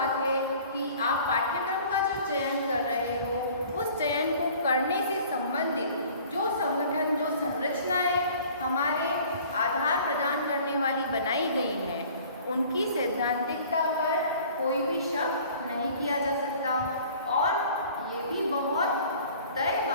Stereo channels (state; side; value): inverted; both; correlation -0.49